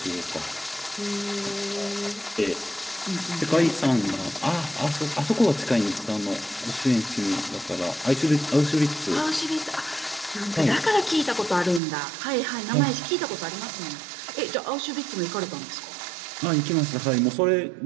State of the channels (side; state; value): left; drops out; at 11.8 s